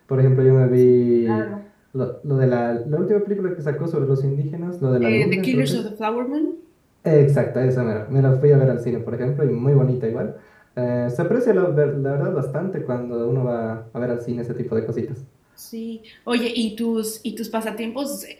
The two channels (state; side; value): identical; both; correlation 1.00